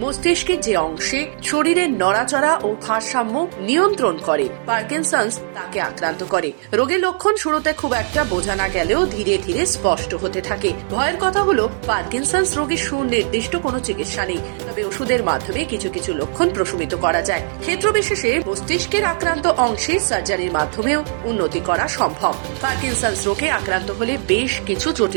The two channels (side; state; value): left; silent; digital silence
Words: মস্তিষ্কের যে অংশে শরীরের নড়াচড়া ও ভারসাম্য নিয়ন্ত্রণ করে পার্কিনসন্স তাকে আক্রান্ত করে। রোগের লক্ষণ শুরুতে খুব একটা বোঝা না গেলেও ধীরে ধীরে স্পষ্ট হতে থাকে। ভয়ের কথা হলো পার্কিনসন্স রোগের সুনির্দিষ্ট কোনো চিকিৎসা নেই, তবে ওষুধের মাধ্যমে কিছু কিছু লক্ষণ প্রশমিত করা যায়। ক্ষেত্র বিশেষে মস্তিষ্কের আক্রান্ত অংশে সার্জারির মাধ্যমেও উন্নতি করা সম্ভব। পার্কিনসন্স রোগে আক্রান্ত হলে বেশ কিছু